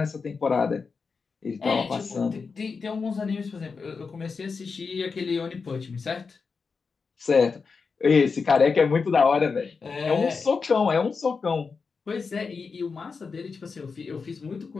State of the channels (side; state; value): right; quieter; 5.0 dB